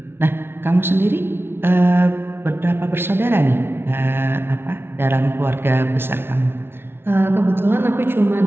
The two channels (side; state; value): left; late; 0.11 ms